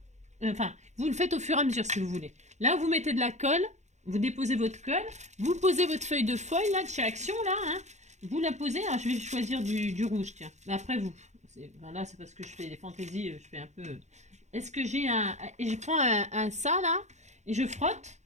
Enfin, vous le faites au fur et à mesure si vous voulez. Là, vous mettez de la colle. Vous déposez votre colle. Vous posez votre feuille de foil, là, de chez Action, là. Hein. Vous la posez. Alors, je vais choisir du rouge, tiens. Mais après, vous. Ben là, c'est parce que je fais des fantaisies. Je fais un peu... Est-ce que j'ai un... Et je prends un ça, là. Et je frotte.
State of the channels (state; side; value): late; left; 0.33 ms